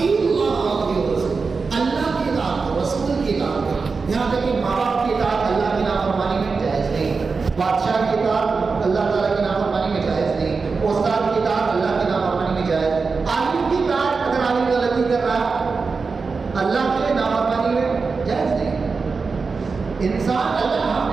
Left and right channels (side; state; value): left; quieter; 4.6 dB